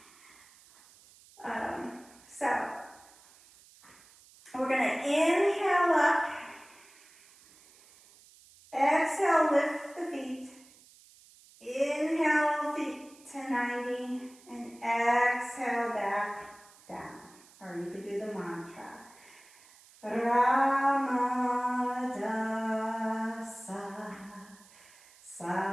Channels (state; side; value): noise; right; hiss, 25 dB below the sound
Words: So, we're going to inhale up, exhale, lift the feet, inhale, feet to 90, and exhale, back down. Or you could do the mantra.